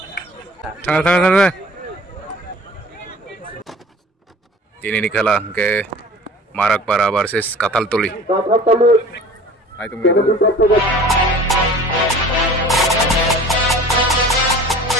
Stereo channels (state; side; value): normal; both; correlation 0.44